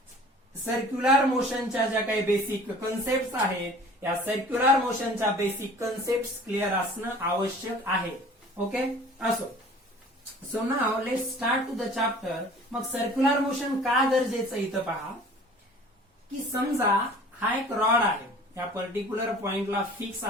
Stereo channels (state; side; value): normal; both; correlation 0.47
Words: सर्क्युलर मोशनच्या ज्या काही बेसिक कन्सेप्ट आहेत या सर्क्युलर मोशनच्या बेसिक कन्सेप्ट क्लिअर असणं आवश्यक आहे. ओके, असो. So now let's start to the chapter. मग सर्क्युलर मोशन का गरजेचं इथं पहा की समजा हा एक रॉड आहे, या पर्टिक्युलर पॉइंटला फिक्स